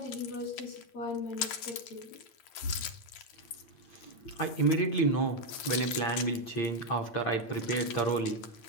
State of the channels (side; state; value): right; late; 8.7 ms